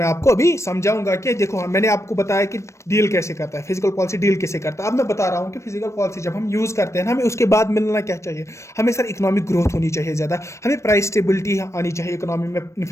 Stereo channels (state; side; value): late; right; 0.14 ms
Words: आपको अभी समझाऊंगा कि देखो मैंने आपको बताया कि डील कैसे करता है, फिजिकल पॉलिसी डील कैसे करता है। अब मैं बता रहा हूं कि फिजिकल पॉलिसी जब हम यूज करते हैं ना, हमें उसके बाद मिलना क्या चाहिए? हमें सर इकोनॉमिक ग्रोथ होनी चाहिए ज़्यादा, हमें प्राइस स्टेबिलिटी आनी चाहिए, इकोनॉमी में